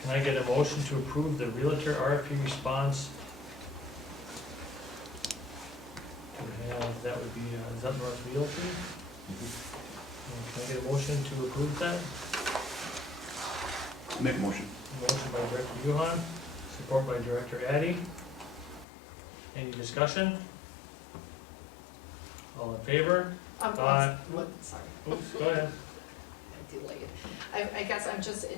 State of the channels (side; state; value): right; drops out; at 18.9 s